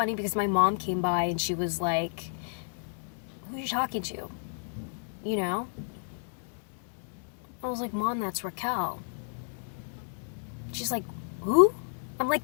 because my mom came by and she was like, who are you talking to? I was like, Mom, that's Raquel. She's like, who? I'm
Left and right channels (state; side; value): silent; right; digital silence